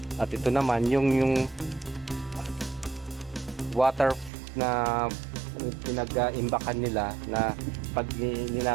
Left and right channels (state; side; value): drops out; left; at 4.3 s